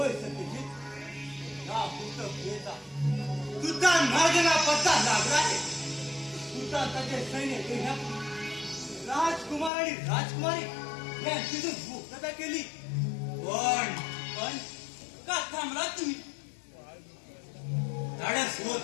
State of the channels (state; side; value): drops out; right; at 9.7 s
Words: सत्यजित. या पुस्तकेचा कृतांत महाराजांना पत्ता लागला आहे. कृतांताचे सैन्य घेण्यापूर्वी राजकुमार आणि राजकुमारी यांची जो मुक्तता केली. पण पण का थांबला तुम्ही. धाडस